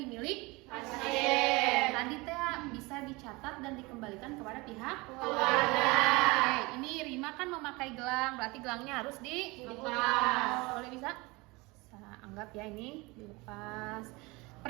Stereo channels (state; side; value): quieter; left; 24.3 dB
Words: Pasien. Tadi teh bisa dicatat dan dikembalikan kepada pihak Keluarga. Oke, ini Rima kan memakai gelang, berarti gelangnya harus dilepas. Boleh bisa? Saya anggap ya ini dilepas.